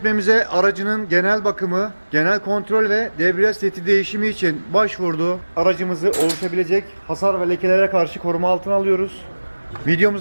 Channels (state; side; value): inverted; both; correlation -1.00